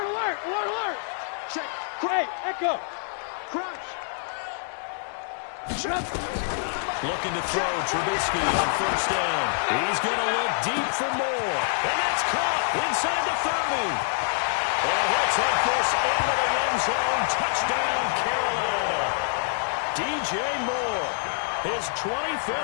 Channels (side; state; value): right; silent; digital silence